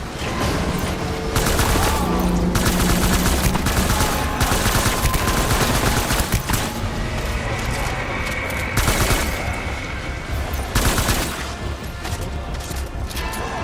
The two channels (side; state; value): both; identical; correlation 1.00